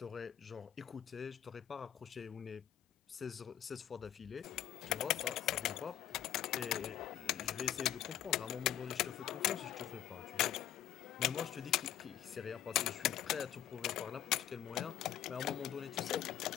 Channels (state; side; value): quieter; right; 11.1 dB